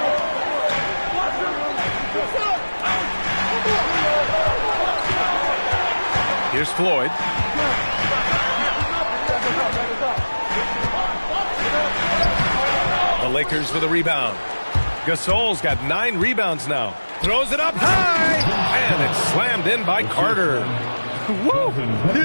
Here's Floyd. The Lakers with a rebound. Gasol's got 9 rebounds now. Throws it up high. And it's slammed in by Carter. Woo!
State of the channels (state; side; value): inverted; both; correlation -1.00